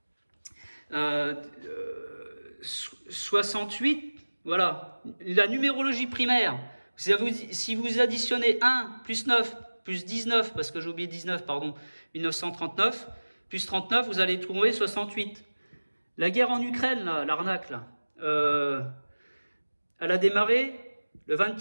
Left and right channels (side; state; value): both; inverted; correlation -1.00